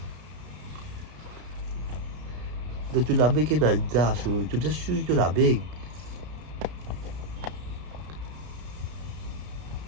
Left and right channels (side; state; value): left; late; 33 ms